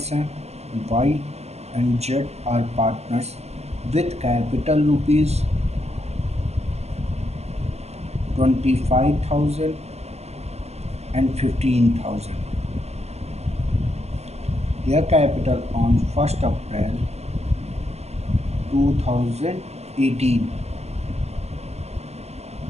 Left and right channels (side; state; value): left; late; 0.31 ms